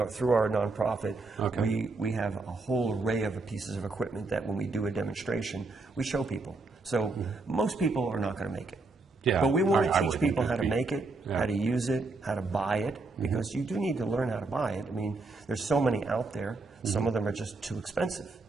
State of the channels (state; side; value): quieter; left; 3.5 dB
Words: through our nonprofit, we have a whole array of pieces of equipment that when we do a demonstration, we show people. So most people are not going to make it. But we want to teach people how to make it, how to use it, how to buy it, because you do need to learn how to buy it. I mean, there's so many out there. Some of them are just too expensive.